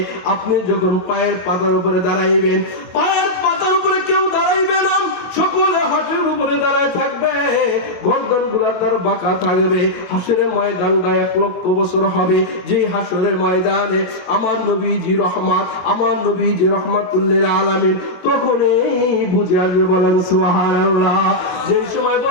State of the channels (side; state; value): right; late; 22 ms